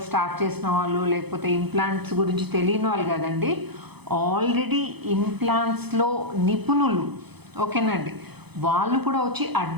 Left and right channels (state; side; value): late; left; 0.98 ms